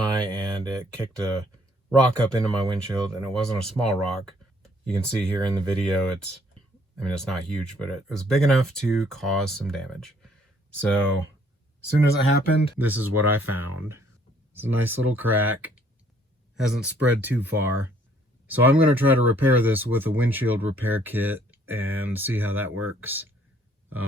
and it kicked a rock up into my windshield, and it wasn't a small rock. You can see here in the video it's not huge, but it was big enough to cause some damage. So as soon as it happened, this is what I found. It's a nice little crack. Hasn't spread too far. So I'm going to try to repair this with a windshield repair kit and see how that works.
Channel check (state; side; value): normal; both; correlation 0.63